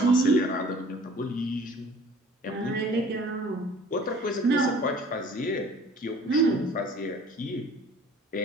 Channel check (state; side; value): normal; both; correlation 0.49